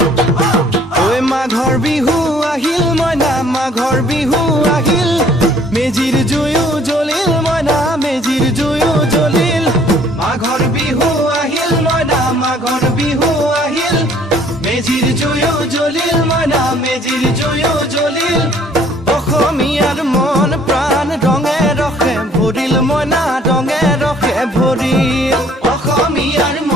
ঐ মাঘৰ বিহু আহিল মইনা মাঘৰ বিহু আহিল মেজিৰ জুয়ো জ্বলিল মইনা মেজিৰ জুয়ো জ্বলিল মাঘৰ বিহু আহিল মইনা মাঘৰ বিহু আহিল মেজিৰ জুয়ো জ্বলিল মইনা মেজিৰ জুয়ো জ্বলিল অসমীয়াৰ মন প্ৰাণ ৰঙে ৰসে ভৰিল মইনা ৰঙে ৰসে ভৰিল অসমীয়াৰ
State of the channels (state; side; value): normal; both; correlation 0.58